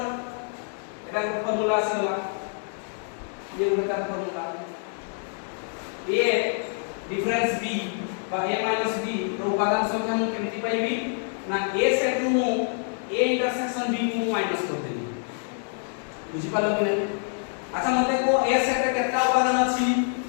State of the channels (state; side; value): silent; right; 58 dB below the other